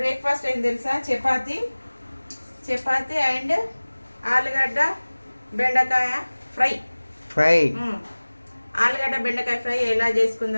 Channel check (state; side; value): inverted; both; correlation -1.00